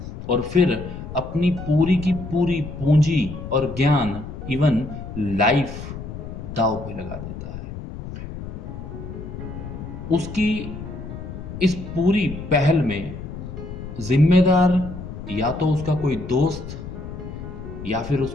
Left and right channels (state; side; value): noise; left; rumble, 10 dB below the sound